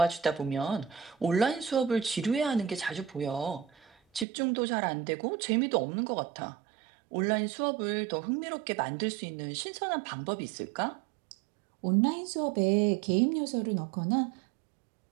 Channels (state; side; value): drops out; left; at 4.2 s